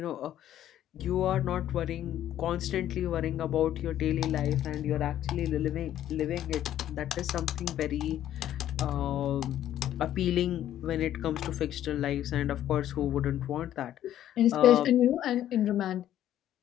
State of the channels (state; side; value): quieter; right; 11.8 dB